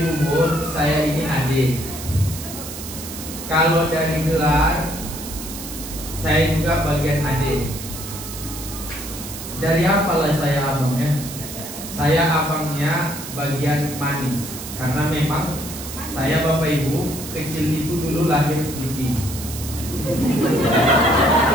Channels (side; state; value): right; noise; hiss, 10 dB below the sound